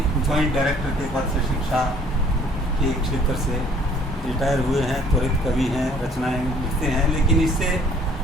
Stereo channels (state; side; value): normal; both; correlation 0.57